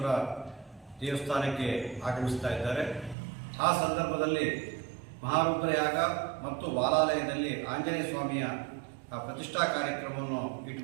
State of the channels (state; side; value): drops out; left; at 3.2 s